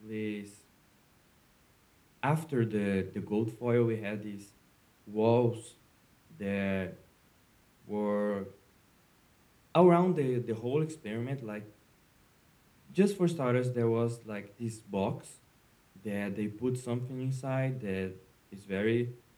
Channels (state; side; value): identical; both; correlation 1.00